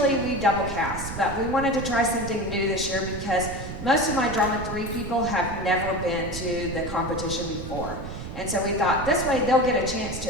double cast, but we wanted to try something new this year because most of my Drama3 people have never been to the competition before. And so we thought this way they'll get a chance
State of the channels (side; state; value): right; noise; rumble, 9 dB below the sound